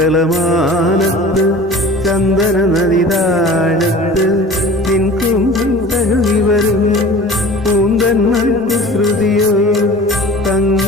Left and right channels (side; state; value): both; normal; correlation 0.41